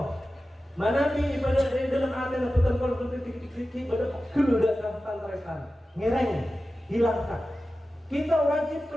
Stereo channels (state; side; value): normal; both; correlation 0.94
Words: Manabi ibadah dalam atena betul-betul ibadah keludak tantrekan, ngereng, hilangkan. Kita wajib